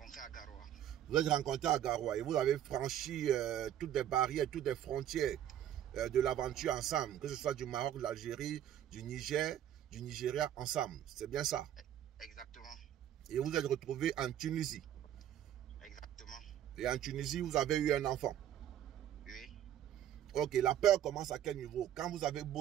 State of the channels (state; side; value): quieter; left; 10.9 dB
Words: à Garoua. Vous êtes rencontré à Garoua et vous avez franchi toutes les barrières, toutes les frontières de l'aventure ensemble, que ce soit du Maroc, de l'Algérie, du Niger, du Nigeria ensemble. C'est bien ça? Exactement. Et vous êtes retrouvé en Tunisie. Exactement. Et en Tunisie, vous avez eu un enfant. Oui. Ok, la peur commence à quel niveau? Quand vous avez